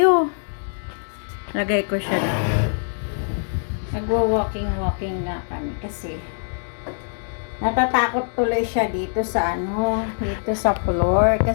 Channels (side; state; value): right; silent; digital silence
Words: Lagay ko siya. Mag-walking na kami. Kasi, natatakot tuloy siya dito sa ano. Dito sa floor.